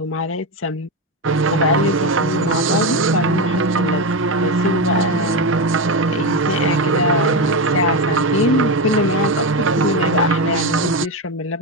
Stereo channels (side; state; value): both; normal; correlation 0.13